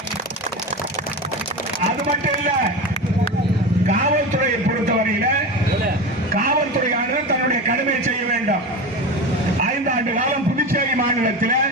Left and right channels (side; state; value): both; normal; correlation 0.25